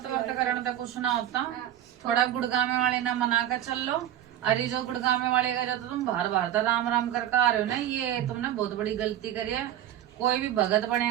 करने तो कुछ ना होता, थोड़ा गुड़गामे वाले ना मना कर चल लो। अरे जो गुड़गामे वाले का जो तुम बार बार तो राम राम करके आ रहे हो ना, ये तुमने बहुत बड़ी गलती करी है। कोई भी भगत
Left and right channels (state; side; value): quieter; left; 11.6 dB